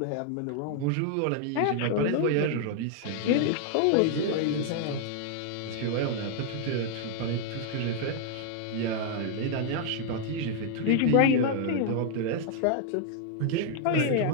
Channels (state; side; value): different; both; correlation 0.00